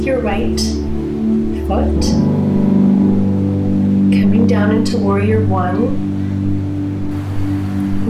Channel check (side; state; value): both; identical; correlation 1.00